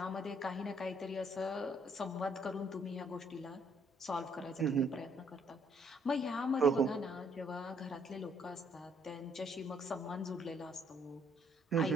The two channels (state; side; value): normal; both; correlation 0.67